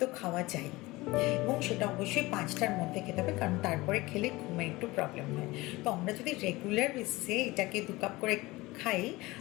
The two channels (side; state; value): right; quieter; 20.7 dB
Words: তো খাওয়া যায়, এবং সেটা অবশ্যই 5টার মধ্যে খেতে হবে, কারণ তারপরে খেলে ঘুমের একটু প্রবলেম হয়। তো আমরা যদি রেগুলার বেসিসে এটাকে 2 কাপ করে খাই,